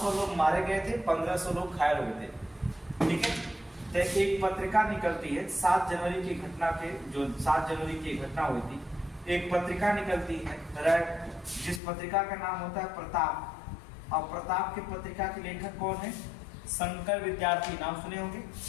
लोग मारे गए थे, 1500 लोग घायल हो गए थे। ठीक है, तो एक पत्रिका निकलती है 7 जनवरी की घटना के, जो 7 जनवरी की घटना हुई थी, एक पत्रिका निकलती है, जिस पत्रिका का नाम होता है प्रताप। और प्रताप की पत्रिका के लेखक कौन है? शंकर विद्यार्थी। नाम सुने होंगे।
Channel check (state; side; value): drops out; right; at 11.8 s